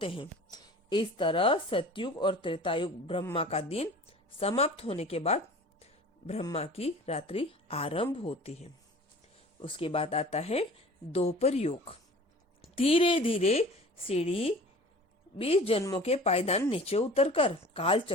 हैं। इस तरह सतयुग और त्रेता युग ब्रह्मा का दिन समाप्त होने के बाद ब्रह्मा की रात्रि आरंभ होती है। उसके बाद आता है द्वापर युग। धीरे धीरे सीढ़ी 20 जन्मों के पायदान नीचे उतरकर काल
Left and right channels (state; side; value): normal; both; correlation 0.43